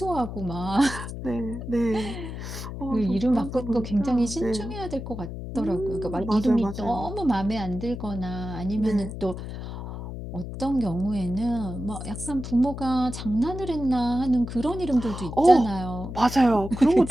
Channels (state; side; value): noise; left; hum, 8 dB below the sound